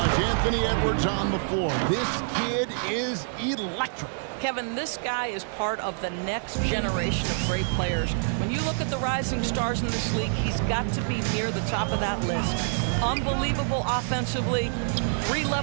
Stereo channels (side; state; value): left; silent; 57 dB below the other